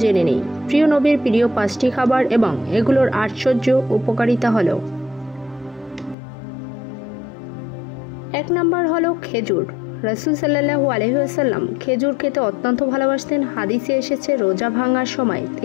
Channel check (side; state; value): right; drops out; at 6.2 s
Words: জেনে নেই প্রিয় নবীর প্রিয় 5টি খাবার এবং এগুলোর আশ্চর্য উপকারিতা হলো। 1 নম্বর হলো খেজুর। রাসূল সাল্লাল্লাহু আলাইহি ওয়াসাল্লাম খেজুর খেতে অত্যন্ত ভালোবাসতেন। হাদিসে এসেছে রোজা ভাঙার সময়